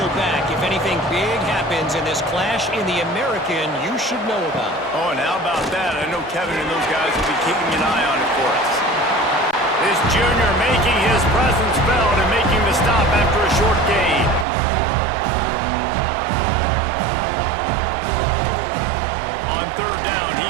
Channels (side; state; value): left; drops out; at 14.5 s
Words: back if anything big happens in this clash in the American you should know about. Oh, and how about that? I know Kevin and those guys will be keeping an eye on it for us. This junior making his presence felt and making the stop after a short gain. On third down,